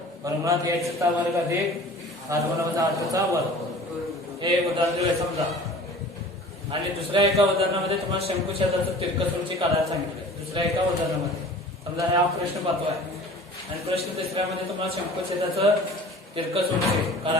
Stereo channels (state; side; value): normal; both; correlation 0.43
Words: वर्गमुळात h चा वर्ग अधिक r1 वजा r2 चा वर्ग. हे उदाहरण दिलंय समजा. आणि दुसऱ्या एका उदाहरणामध्ये तुम्हाला शंकुछेदाचं तिरकस उंची काढायला सांगितलंय. दुसऱ्या एका उदाहरणामध्ये समजा हा प्रश्न पाहतो आहे आणि प्रश्न तिसऱ्यामध्ये तुम्हाला शंकुछेदाचं तिरकस उंची